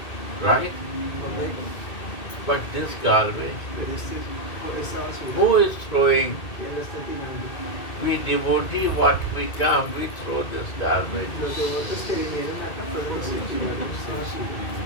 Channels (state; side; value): late; right; 2.2 ms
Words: right? ¿Correcto? But this garbage, Pero esta basura, who is throwing? ¿quién la está tirando? We devotee, what we come, we throw this garbage. Los devotos que vinieron acá fueron los que tiraron esta basura.